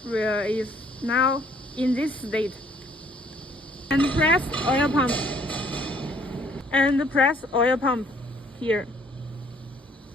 is now in this state. And press oil pump. And press oil pump here.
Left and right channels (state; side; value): normal; both; correlation 0.61